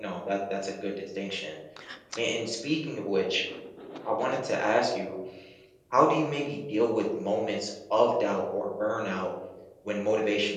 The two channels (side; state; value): both; identical; correlation 1.00